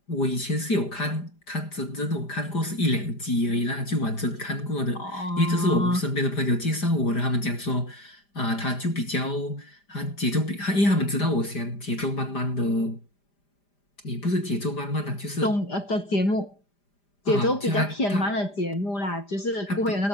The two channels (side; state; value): right; late; 5.0 ms